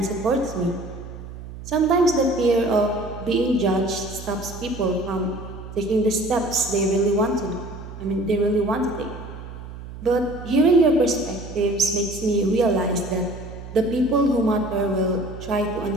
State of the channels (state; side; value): noise; right; hum, 12 dB below the sound